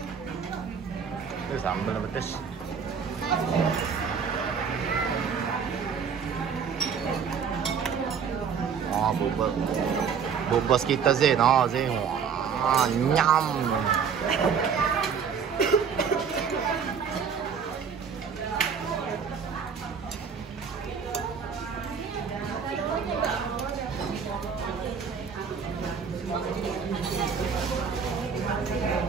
Itu sambal pedes. Oh, bubos kita Zain. Oh, Zain. Wah, nyam.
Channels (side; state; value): left; quieter; 6.6 dB